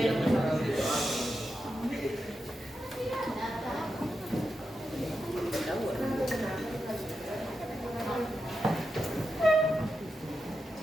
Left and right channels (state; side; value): normal; both; correlation 0.88